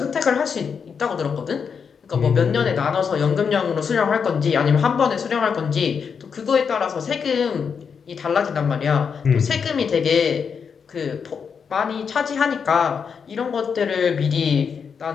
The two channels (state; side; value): quieter; right; 6.4 dB